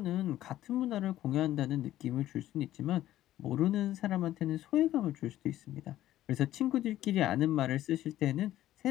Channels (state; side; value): quieter; right; 13.7 dB